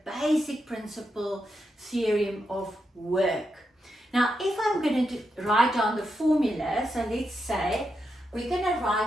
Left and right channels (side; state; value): both; normal; correlation 0.85